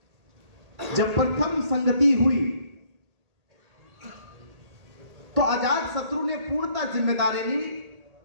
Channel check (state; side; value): late; left; 1.8 ms